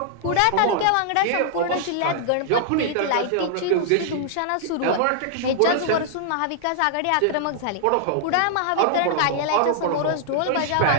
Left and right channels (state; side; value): different; both; correlation -0.01